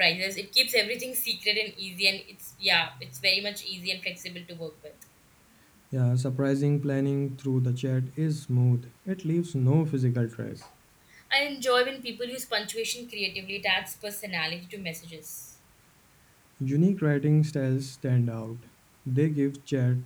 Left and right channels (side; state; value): both; identical; correlation 1.00